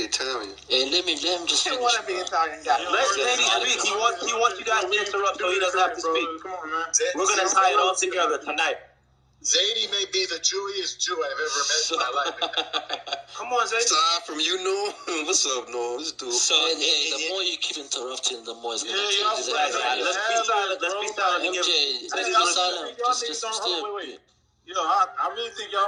Italian. Hey, let me just finish. want to be Italian guy. Let Zadie speak. He wants you guys to interrupt so he doesn't have to speak. Come on, man. We're gonna tie it all together tonight. Zadie may be the Jewiest Jew I've ever met in my life. Come on, Zadie. Aside from you, Noah. What's up, Noah? This dude. So, the more you keep interrupting, the more it's going to change. Let's be silent. Let's be silent. MJ, let's be silent. Just stay. I really think y'all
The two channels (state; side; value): identical; both; correlation 1.00